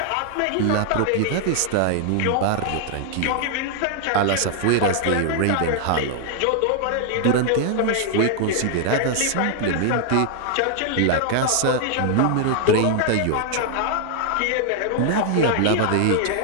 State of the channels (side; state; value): both; different; correlation 0.00